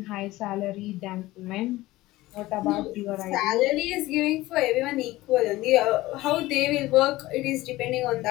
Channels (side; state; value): right; quieter; 17.9 dB